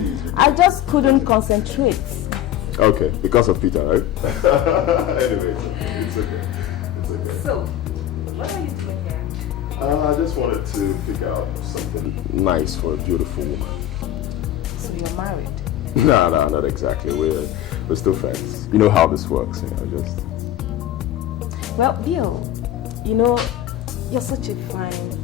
you did. I just couldn't concentrate. Okay, because of Peter, right? Anyway, it's okay. So, what are you doing here? I just wanted to pick out something nice for a beautiful woman. So you're married? No, not exactly. We're still friends. You know how this works, just... Well, Bill, you're such a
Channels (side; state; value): right; quieter; 12.2 dB